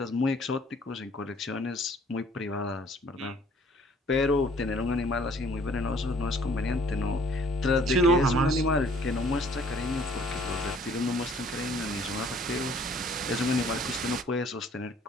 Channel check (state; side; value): normal; both; correlation 0.58